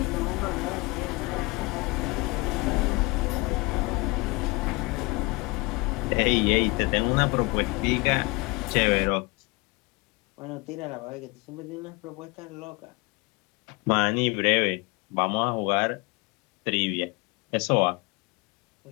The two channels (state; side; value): quieter; right; 26.2 dB